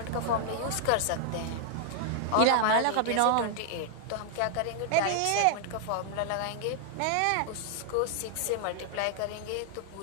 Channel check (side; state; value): both; different; correlation 0.00